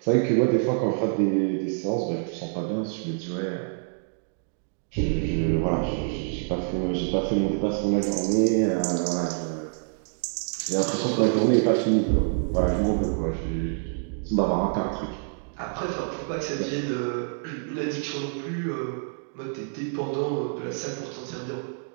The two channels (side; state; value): left; silent; digital silence